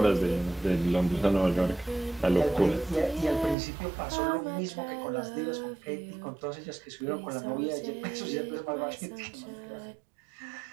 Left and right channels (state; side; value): drops out; left; at 3.6 s